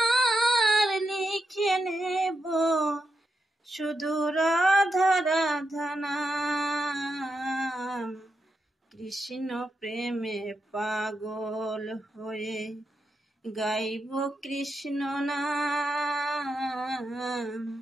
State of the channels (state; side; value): normal; both; correlation 0.85